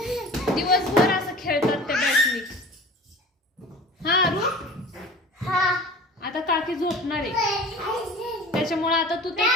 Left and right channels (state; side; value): normal; both; correlation 0.40